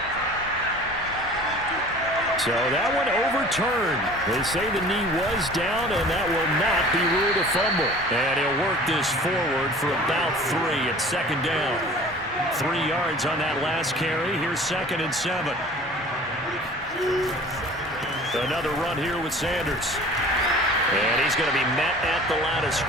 So that one overturned. They say the knee was down, and that will not be ruled a fumble. And he'll work this forward for about 3 at 2nd down. 3 yards on that last carry. Here's 2nd and 7. Another run here with Sanders. And he's going to be met at the line of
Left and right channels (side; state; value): both; normal; correlation 0.45